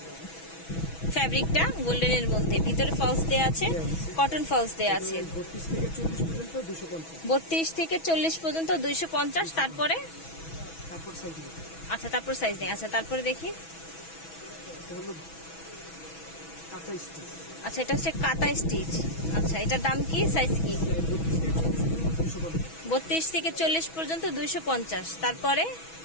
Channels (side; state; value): right; late; 6.1 ms